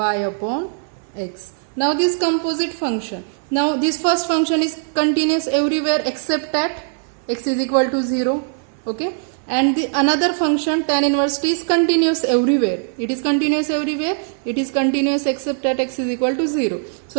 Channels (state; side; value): silent; left; 59 dB below the other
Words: upon x. Now this composite function. Now this first function is continuous everywhere except at x is equal to 0. Okay. And the another function tan inverse t is continuous everywhere. It is continuous everywhere. It is continuous except at x is equal to 0.